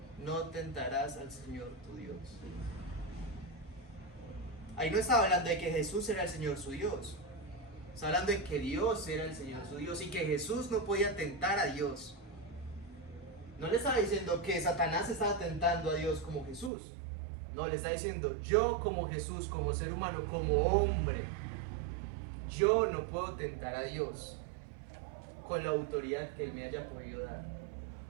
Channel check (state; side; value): drops out; left; at 16.7 s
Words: No tentarás al Señor tu Dios. Ahí no estaba hablando de que Jesús era el Señor su Dios. Está hablando de que Dios era el Señor su Dios y que Jesús no podía tentar a Dios. No le estaba diciendo que Satanás estaba tentando a Dios como Jesús. No, le está diciendo, yo como Jesús, como ser humano, como hombre, yo no puedo tentar a Dios con la autoridad que Él me haya podido dar.